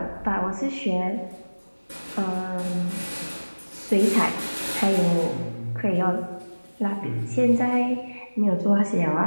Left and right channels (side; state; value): both; inverted; correlation -1.00